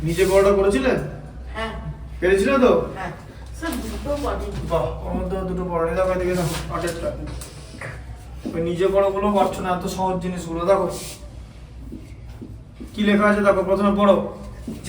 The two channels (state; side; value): identical; both; correlation 1.00